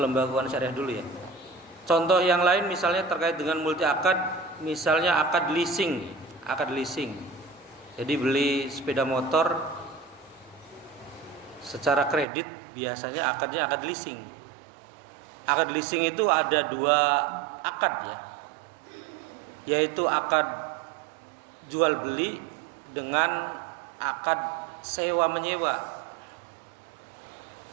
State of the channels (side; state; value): left; drops out; at 12.2 s